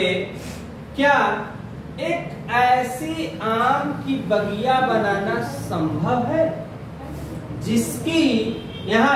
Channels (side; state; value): both; identical; correlation 1.00